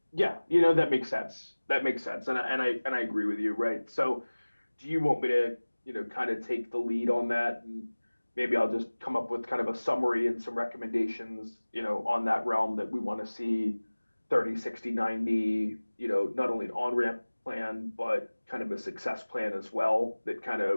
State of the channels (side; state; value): both; inverted; correlation -1.00